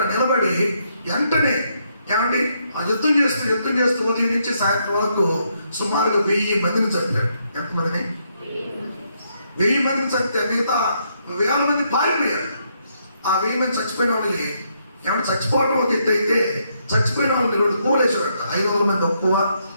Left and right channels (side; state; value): both; inverted; correlation -0.76